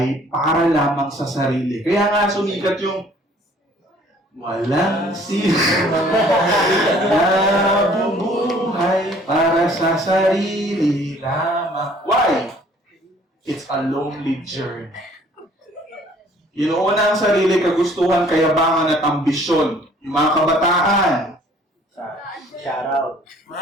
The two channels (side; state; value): both; normal; correlation 0.56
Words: para lamang sa sarili. Kaya nga sumikat yung walang sino nabubuhay para sa sarili lamang. Why? It's a lonely journey. Inuuna ang sarili, kagustuhan, kayabangan at ambisyon. Yung mga kabataan. Shout out.